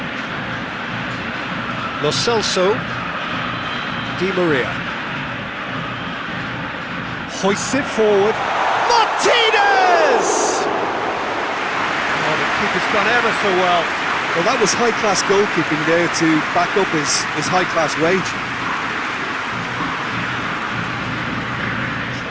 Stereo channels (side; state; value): both; identical; correlation 1.00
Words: Lo Celso. Di Maria. Hoists it forward. Martinez! Oh, the keeper's done ever so well. Well, that was high-class goalkeeping there to back up his high-class wage.